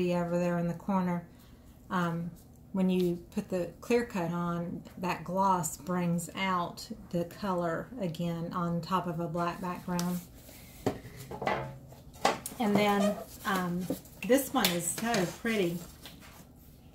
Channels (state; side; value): identical; both; correlation 1.00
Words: over there in the corner, when you put the clear coat on, that gloss brings out the color again on top of a black background. And then this one is so pretty.